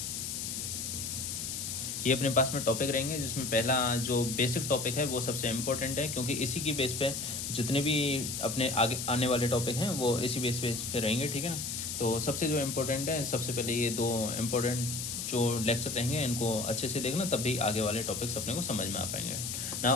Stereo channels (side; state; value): left; noise; hiss, 4 dB below the sound